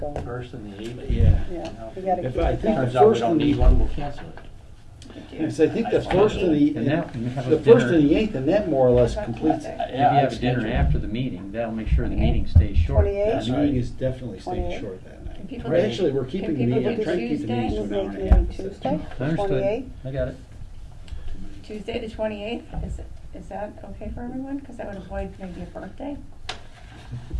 1st and the 8th. Yeah. Yeah, you gotta If keep I it think going. Turns out we First don't and the- need one, we'll cancel it. Yes, I think the first and And that- and have a the first dinner. and the 8th, and that more or less completes it. If you have a dinner after the meeting, that'll make sure the meeting stays short. 28th? The meeting is definitely staying 28th. short that night. Can people Or do- actually, we're keeping the can people meeting, I'm do trying to keep the Tuesday? meetings to You an hour make and a half. maybe Tuesday, Understood. 28th? I got it. Tuesday, the 28th, is that okay for everyone? Because that would avoid maybe a birthday.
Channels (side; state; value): both; identical; correlation 1.00